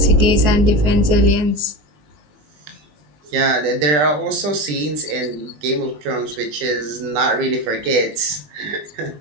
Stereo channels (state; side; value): late; left; 20 ms